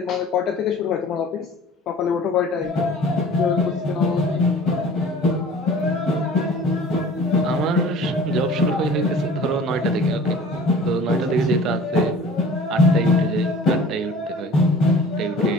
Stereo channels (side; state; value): both; normal; correlation 0.45